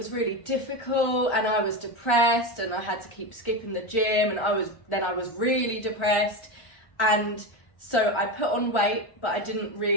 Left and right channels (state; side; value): late; right; 1.4 ms